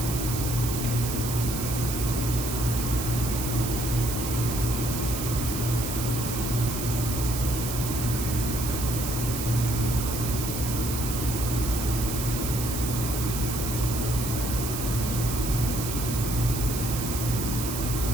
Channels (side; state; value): right; noise; hiss, 5 dB below the sound